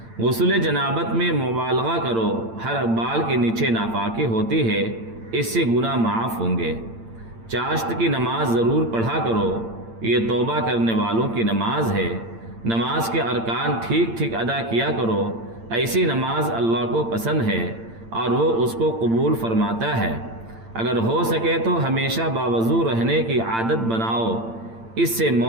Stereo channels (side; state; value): left; late; 8.8 ms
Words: غسل جنابت میں مبالغہ کرو، ہر بال کے نیچے ناپاکی ہوتی ہے، اس سے گناہ معاف ہوں گے۔ چاشت کی نماز ضرور پڑھا کرو، یہ توبہ کرنے والوں کی نماز ہے۔ نماز کے ارکان ٹھیک ادا کیا کرو، ایسی نماز اللہ کو پسند ہے اور وہ اس کو قبول فرماتا ہے۔ اگر ہو سکے تو ہمیشہ باوضو رہنے کی عادت بناؤ، اس سے